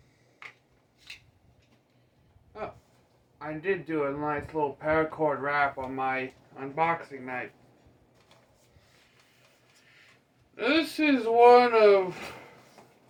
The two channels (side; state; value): both; identical; correlation 1.00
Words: Oh, I did do a nice little paracord wrap on my unboxing night. This is one of